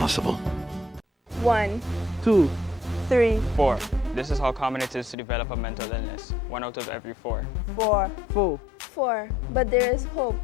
1, 2, 3, 4. This is how common it is to develop a mental illness, 1 out of every 4. 4. But there is hope.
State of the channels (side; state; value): right; drops out; at 5.2 s